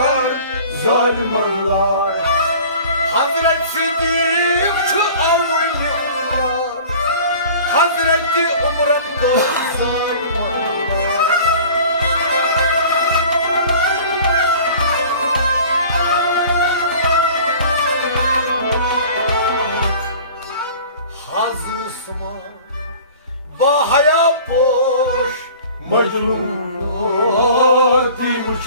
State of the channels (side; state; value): both; inverted; correlation -0.44